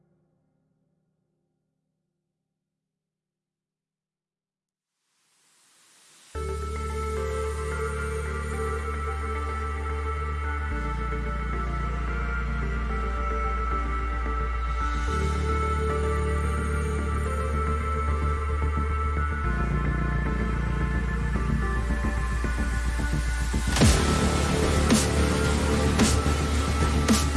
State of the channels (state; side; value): identical; both; correlation 1.00